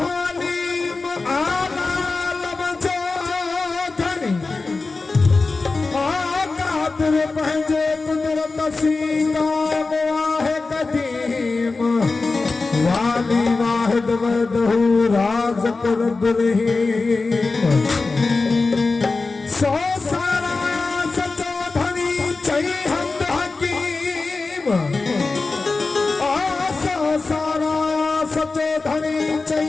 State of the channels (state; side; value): quieter; right; 3.8 dB